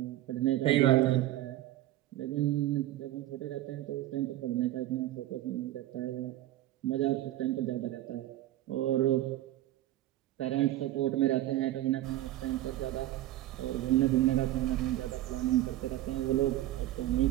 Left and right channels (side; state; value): left; quieter; 14.7 dB